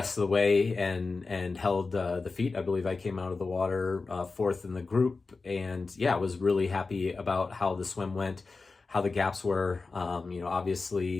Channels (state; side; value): quieter; right; 4.0 dB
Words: of the way and held the feet. I believe I came out of the water fourth in the group. And yeah, I was really happy about how the swim went, how the gaps were.